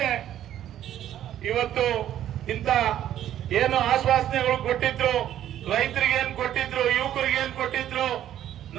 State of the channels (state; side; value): quieter; left; 11.6 dB